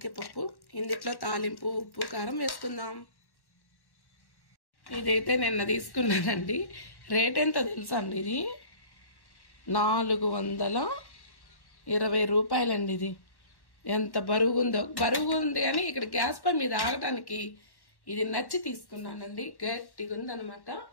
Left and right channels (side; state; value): right; late; 1.1 ms